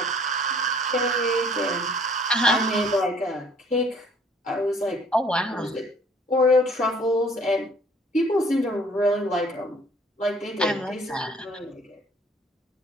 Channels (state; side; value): normal; both; correlation 0.56